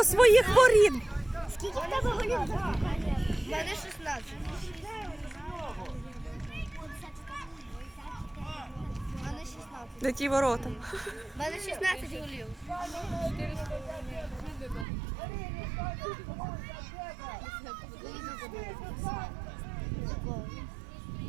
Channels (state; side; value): drops out; left; at 14.9 s